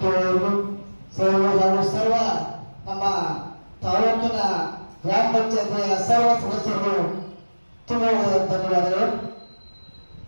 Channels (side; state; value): both; inverted; correlation -1.00